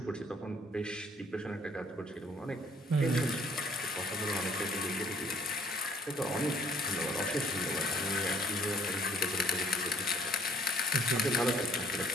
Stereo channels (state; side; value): normal; both; correlation 0.61